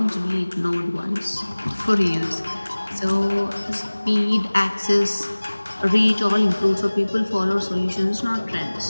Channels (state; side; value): inverted; both; correlation -1.00